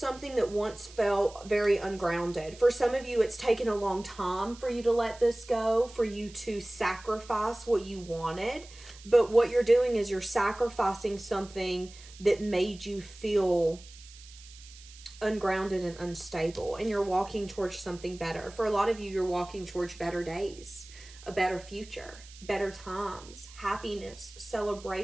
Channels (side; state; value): right; noise; hiss, 20 dB below the sound